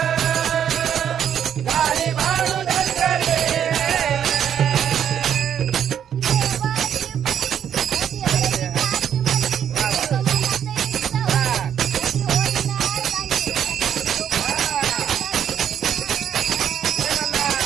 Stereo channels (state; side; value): quieter; left; 9.2 dB